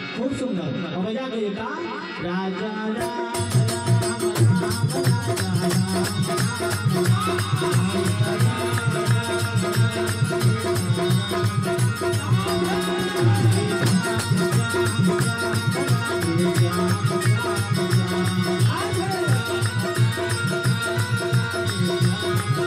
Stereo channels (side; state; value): both; identical; correlation 1.00